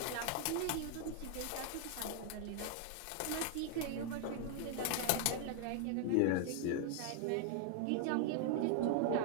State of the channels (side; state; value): both; different; correlation 0.00